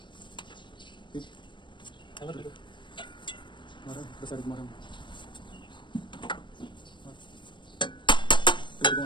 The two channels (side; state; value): right; late; 0.23 ms